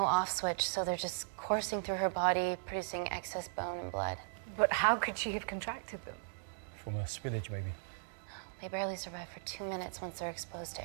off switch, so they're just coursing through her body, producing excess bone and blood. But how could she have contracted them? From a spillage, maybe. They barely survive for 2 minutes once they're exposed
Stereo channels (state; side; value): silent; left; digital silence